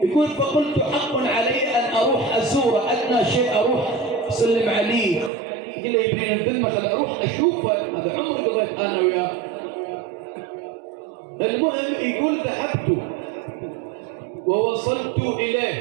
يقول فقلت حق علي أن أروح أزوره، أدنى شيء أروح أسلم عليه. يقول لي يبرين الذمة خل أروح أشوفه، هذا عمري قضيت أنا وياه. المهم يقول ذهبت ووصلت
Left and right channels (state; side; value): drops out; left; at 5.3 s